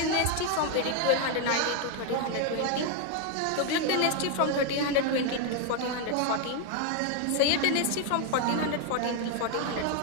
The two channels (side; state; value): both; different; correlation 0.01